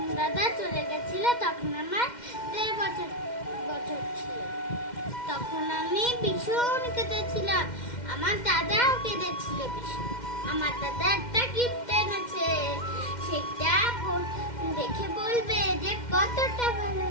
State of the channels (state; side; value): late; right; 2.1 ms